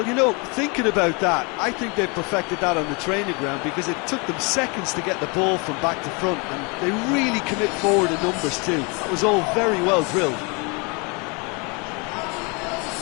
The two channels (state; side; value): quieter; right; 31.0 dB